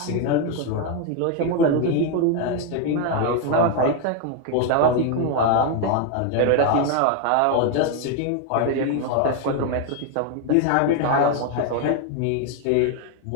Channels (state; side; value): different; both; correlation 0.01